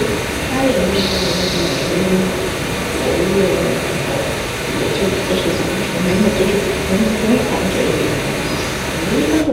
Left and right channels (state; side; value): identical; both; correlation 1.00